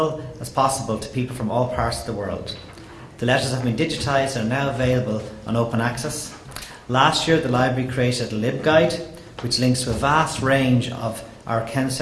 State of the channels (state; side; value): identical; both; correlation 1.00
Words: as possible to people from all parts of the world. The letters have been digitised and are now available on open access. Last year, the library created a LibGuide, which links to a vast range of our Ken